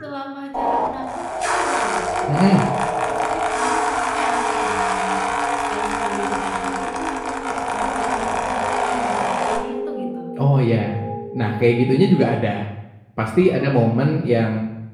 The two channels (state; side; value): identical; both; correlation 1.00